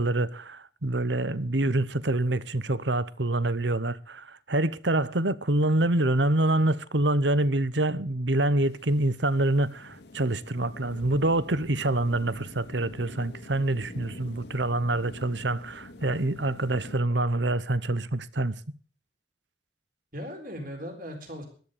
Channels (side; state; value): both; normal; correlation 0.52